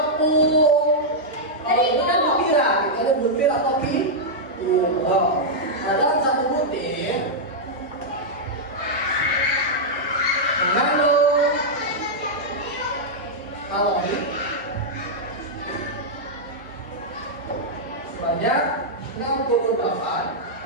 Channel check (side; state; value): both; normal; correlation -0.06